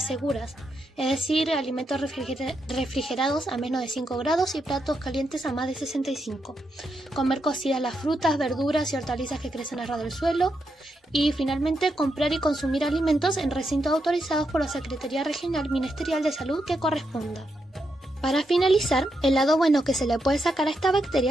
seguras, es decir, alimentos refrigerados a menos de 5 grados y platos calientes a más de 65, comer cocidas las frutas, verduras y hortalizas que crecen a ras del suelo y finalmente comprar y consumir alimentos en recintos autorizados por la Secretaría Regional Ministerial de Salud que corresponda. Para finalizar, el lado bueno que se le puede sacar a esta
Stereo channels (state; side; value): normal; both; correlation 0.83